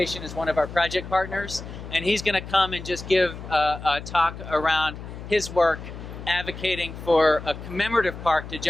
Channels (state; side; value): noise; left; hum, 11 dB below the sound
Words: is one of our project partners, and he's going to come and just give a talk around his work advocating for a commemorative park to